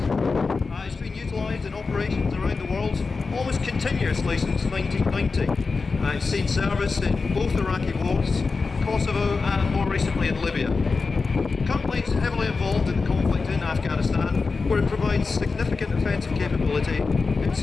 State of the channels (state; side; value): quieter; right; 4.4 dB